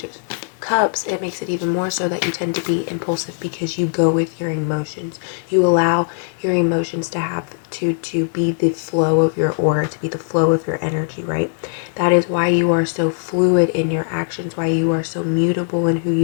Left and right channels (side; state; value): right; silent; digital silence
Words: of Cups, it makes it even more so that you tend to be impulsive because you go with your emotions. You allow your emotions to have to be the flow of your aura, to be the flow of your energy, right? That is why you are so fluid in your actions, why you are so mutable in who